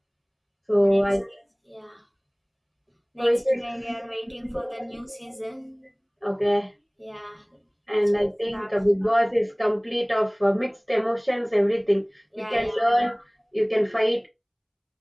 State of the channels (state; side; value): identical; both; correlation 1.00